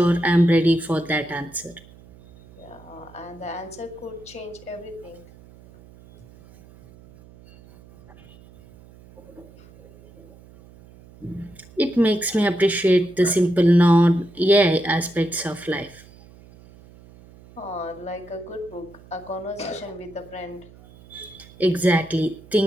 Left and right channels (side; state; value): right; noise; hum, 23 dB below the sound